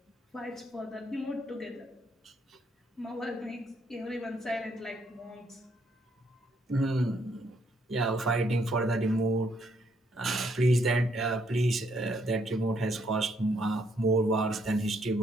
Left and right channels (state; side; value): normal; both; correlation 0.71